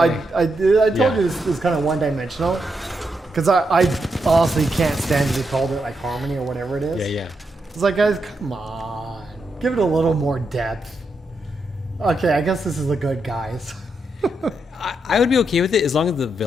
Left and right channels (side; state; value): both; normal; correlation 0.83